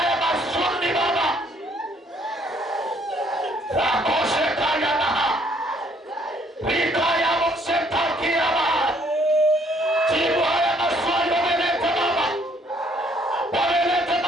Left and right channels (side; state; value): both; normal; correlation 0.64